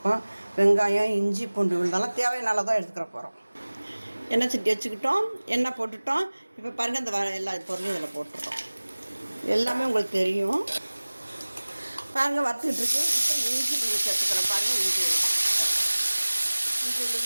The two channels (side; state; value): both; inverted; correlation -1.00